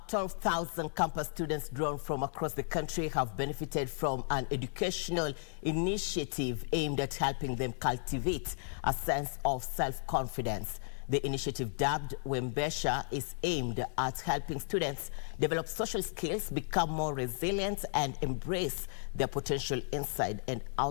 12,000 campus students drawn from across the country have benefited from an educational initiative aimed at helping them cultivate a sense of self-confidence. The initiative, dubbed Wembesha, is aimed at helping students develop social skills, become more resilient, and embrace their potential inside and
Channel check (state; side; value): silent; right; digital silence